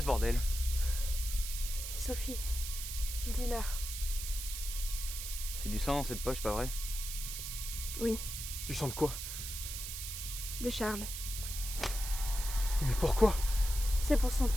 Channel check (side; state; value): right; noise; hiss, 6 dB below the sound